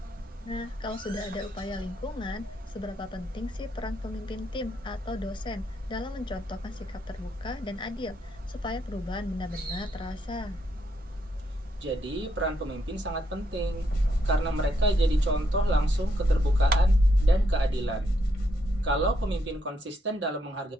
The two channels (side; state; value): both; normal; correlation 0.77